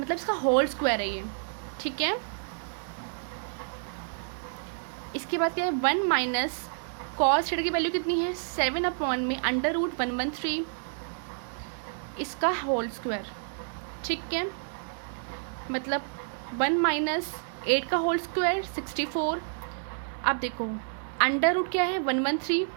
इसका होल स्क्वायर है ये। ठीक है, इसके बाद क्या है, 1 माइनस कॉस थीटा की वैल्यू कितनी है, 7 अपॉन में √113 इसका होल स्क्वायर। ठीक है, मतलब 1 माइनस 8 का होल स्क्वायर 64। अब देखो अंडर रूट क्या है, 113,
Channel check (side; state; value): left; silent; digital silence